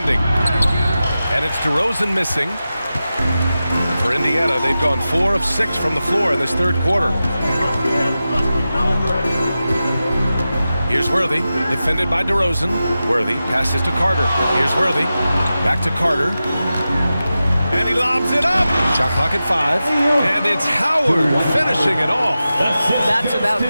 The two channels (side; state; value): both; inverted; correlation -0.93